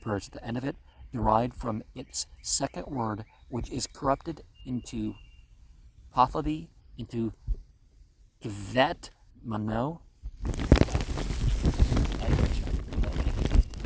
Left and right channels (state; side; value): identical; both; correlation 1.00